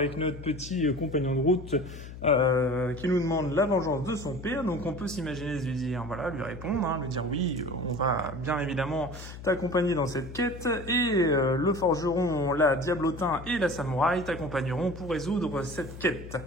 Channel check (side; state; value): left; noise; hum, 13 dB below the sound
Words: notre petit compagnon de route qui nous demande la vengeance de son père. Donc on peut s'imaginer lui dire, voilà, lui répondre, lui dire oui, on va bien évidemment t'accompagner dans cette quête. Et le forgeron, la diablotin et la samouraï t'accompagneront pour résoudre cette quête.